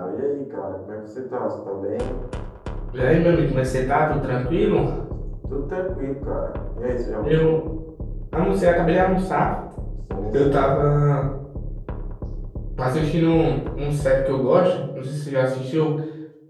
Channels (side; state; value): both; identical; correlation 1.00